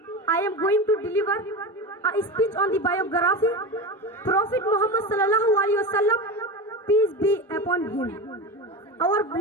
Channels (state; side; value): normal; both; correlation 0.24